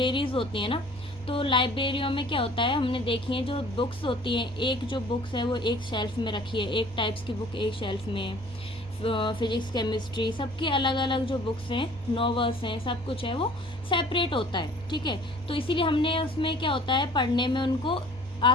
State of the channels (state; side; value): normal; both; correlation 0.51